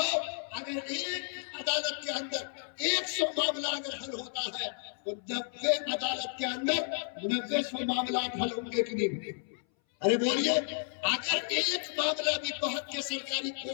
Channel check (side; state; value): right; silent; 56 dB below the other